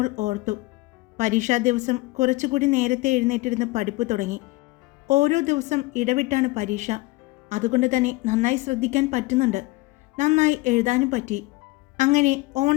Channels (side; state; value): right; quieter; 21.4 dB